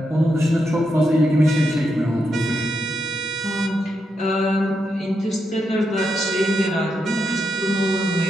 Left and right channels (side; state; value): both; normal; correlation 0.83